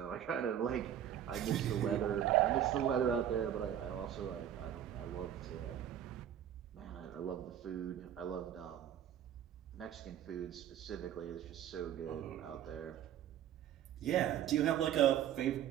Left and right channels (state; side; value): quieter; left; 10.4 dB